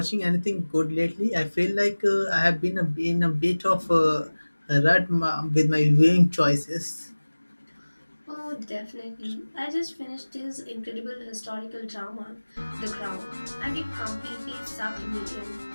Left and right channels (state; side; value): inverted; both; correlation -1.00